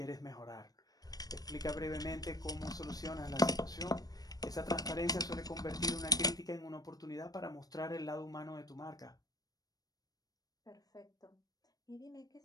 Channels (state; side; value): late; right; 0.18 ms